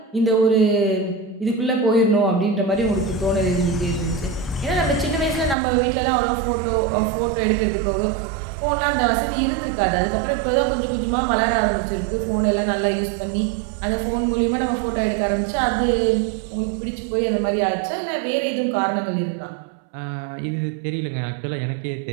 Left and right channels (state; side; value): drops out; left; at 5.6 s